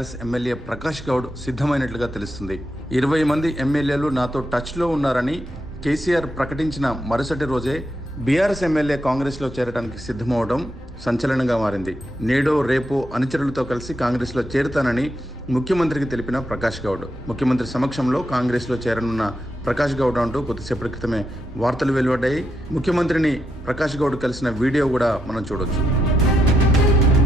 ఎమ్మెల్యే ప్రకాష్ గౌడ్ సిద్ధమైనట్లుగా తెలుస్తుంది. 20 మంది ఎమ్మెల్యేలు నాతో టచ్లో ఉన్నారని కేసీఆర్ ప్రకటించిన మరుసటి రోజే బీఆర్ఎస్ ఎమ్మెల్యే కాంగ్రెస్లో చేరడానికి సిద్ధమవడం సంచలనంగా మారింది. నేడో రేపో అనుచరులతో కలిసి కాంగ్రెస్లో చేరుతానని ముఖ్యమంత్రికి తెలిపిన ప్రకాష్ గౌడ్, ముఖ్యమంత్రి సమక్షంలో కాంగ్రెస్లో చేరనున్న ప్రకాష్ గౌడ్ అంటూ కొద్దిసేపటి క్రితమే వార్తలు వెలువడ్డాయి. ముఖ్యమంత్రిని ప్రకాష్ గౌడ్ కలిసిన వీడియో కూడా మనం చూడొచ్చు.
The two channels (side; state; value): both; normal; correlation 0.81